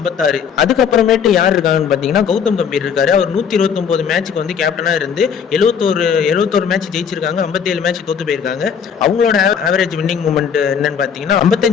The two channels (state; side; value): quieter; right; 7.2 dB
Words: அதுக்கப்புறமேட்டு யார் இருக்காங்கன்னு பாத்தீங்கன்னா கௌதம் கம்பீர் இருக்காரு. அவர் 129 மேட்சுக்கு கேப்டனா இருந்து 71 மேட்ச் ஜெயிச்சிருக்காங்க, 57 மேட்ச் தோத்து போயிருக்காங்க. அவங்களோட ஆவரேஜ் வின்னிங் மூமெண்ட் என்னன்னு பாத்தீங்கன்னா